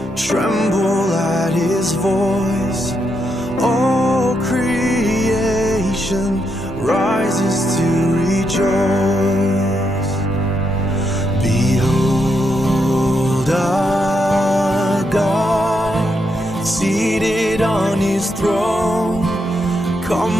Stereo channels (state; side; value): normal; both; correlation 0.80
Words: tremble at his voice. All creation rises to rejoice. Behold our God, seated on his throne.